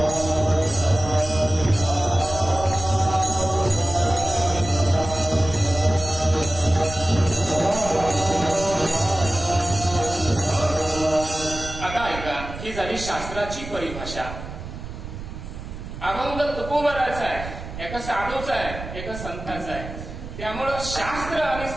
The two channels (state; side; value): noise; right; rumble, 10 dB below the sound